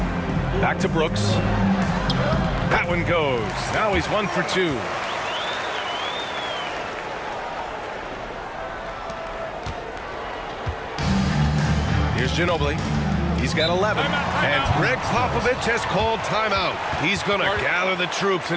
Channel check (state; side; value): identical; both; correlation 1.00